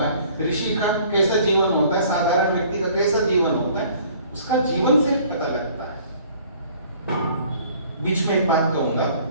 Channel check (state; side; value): inverted; both; correlation -0.54